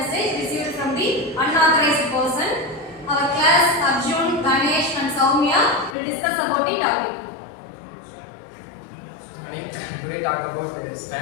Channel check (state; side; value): drops out; right; at 6.0 s